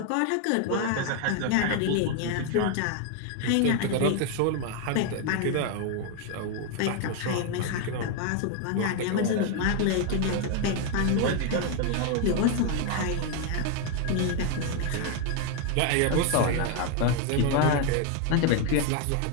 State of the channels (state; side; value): different; both; correlation 0.01